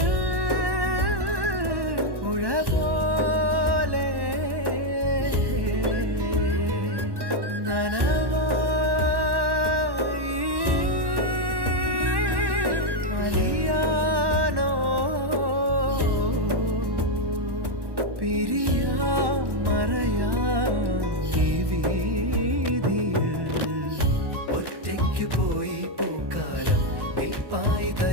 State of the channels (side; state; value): left; late; 1.1 ms